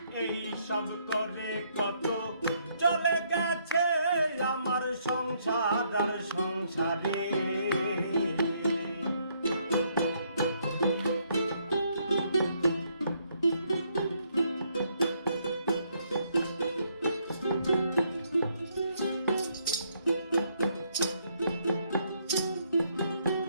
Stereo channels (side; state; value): both; inverted; correlation -0.71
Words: এই সব করে কত চলে গেছে আমার সংসার আর সংসারে।